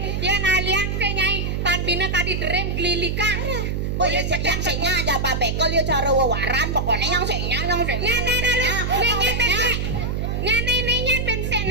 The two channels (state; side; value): noise; right; hum, 1 dB below the sound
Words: Ya nalian ke nyai tan bina kadi derem glilikan. Oh ya yang senya aja Pak Pekel ya cara wawaran pokoknya yang senya. Nenek lalu, nenek pensek. Nenek pensek